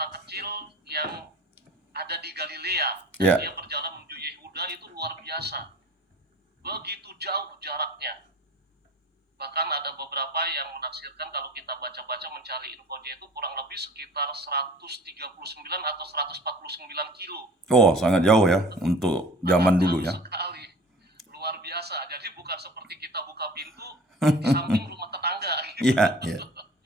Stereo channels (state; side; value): normal; both; correlation 0.44